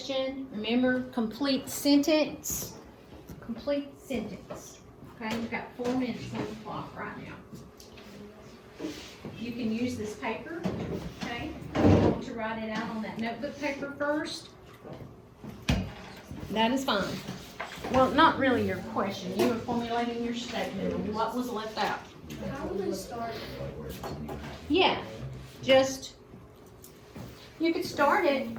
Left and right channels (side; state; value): both; identical; correlation 1.00